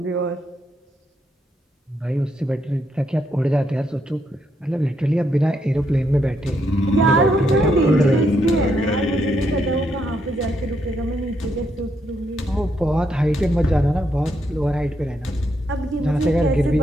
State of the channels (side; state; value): both; normal; correlation 0.77